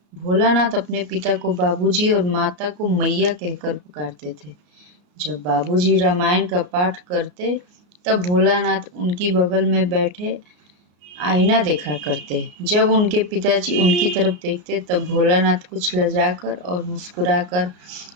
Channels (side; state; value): left; late; 33 ms